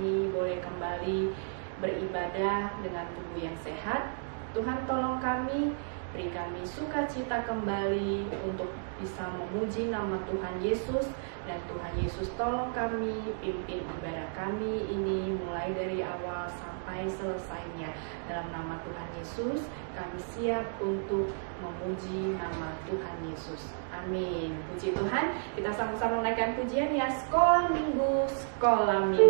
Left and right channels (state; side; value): silent; left; digital silence